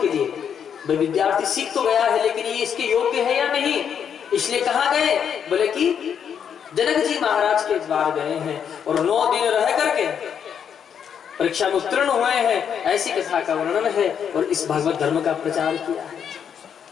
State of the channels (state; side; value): quieter; right; 7.9 dB